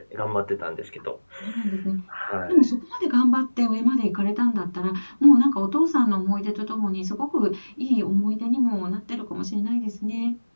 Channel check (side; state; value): both; inverted; correlation -1.00